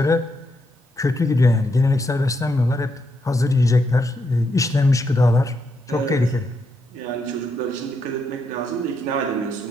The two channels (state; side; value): normal; both; correlation 0.80